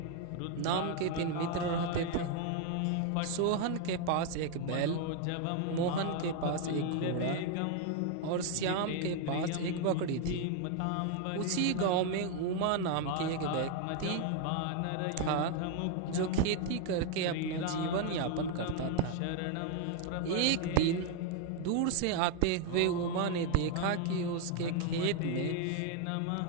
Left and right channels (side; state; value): both; different; correlation 0.01